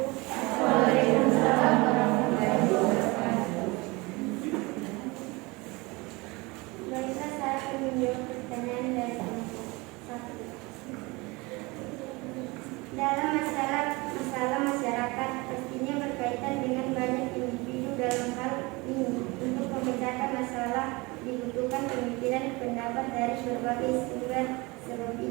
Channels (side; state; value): left; quieter; 24.6 dB